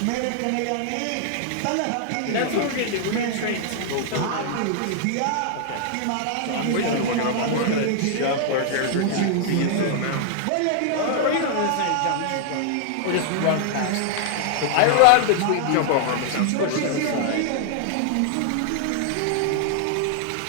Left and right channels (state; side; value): different; both; correlation 0.00